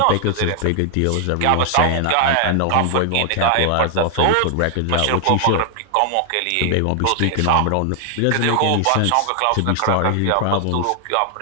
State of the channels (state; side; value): different; both; correlation 0.00